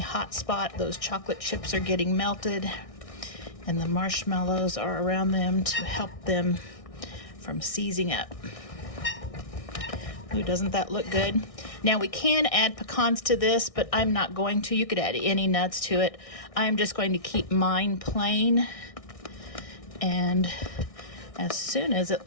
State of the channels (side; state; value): right; late; 1.6 ms